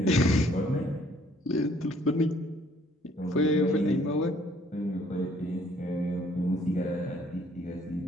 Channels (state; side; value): normal; both; correlation 0.62